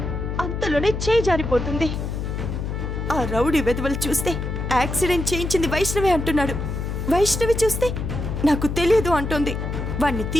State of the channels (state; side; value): noise; left; hum, 4 dB below the sound